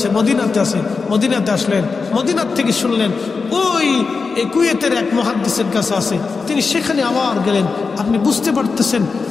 মদিনাতে আছে, মদিনাতে আসলেন, মদিনার থেকে শুনলেন ওই কুয়েতের এক মুহাদ্দিসের কাছে আছে, তিনি সেখানে আবার গেলেন। আপনি বুঝতে পারতেছেন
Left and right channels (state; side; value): quieter; right; 4.7 dB